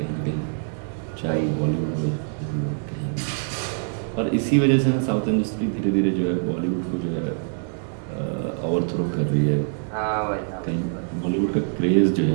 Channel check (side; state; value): left; silent; digital silence